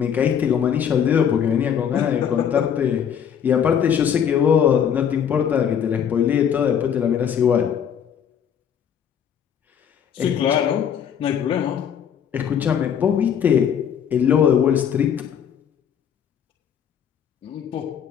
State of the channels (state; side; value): quieter; right; 8.4 dB